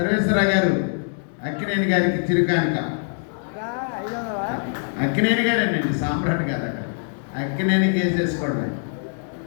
గారు అక్కినేని గారికి చిరు కానుక. అక్కినేని గారేనండి, సామ్రాట్ గారు అక్కడ అక్కినేని కేసేసుకోవడం.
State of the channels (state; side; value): silent; right; 60 dB below the other